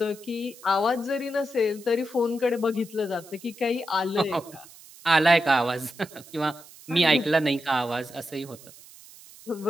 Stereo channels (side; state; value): right; noise; hiss, 21 dB below the sound